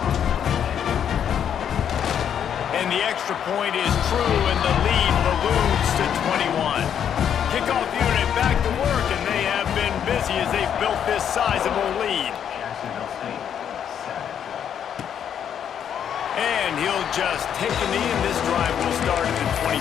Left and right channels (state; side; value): quieter; right; 8.8 dB